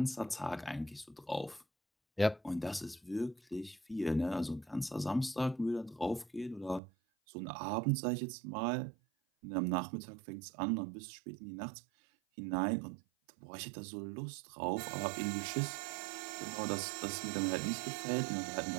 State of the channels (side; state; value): left; drops out; at 6.8 s